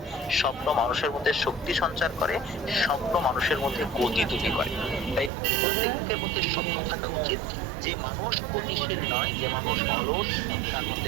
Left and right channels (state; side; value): drops out; left; at 5.3 s